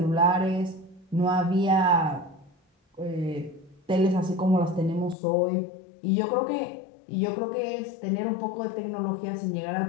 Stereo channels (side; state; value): right; drops out; at 5.2 s